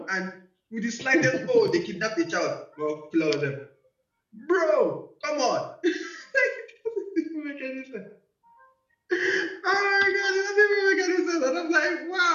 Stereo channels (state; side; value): identical; both; correlation 1.00